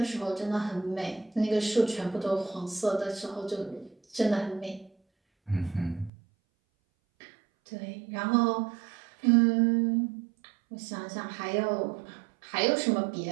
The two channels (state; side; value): drops out; left; at 6.1 s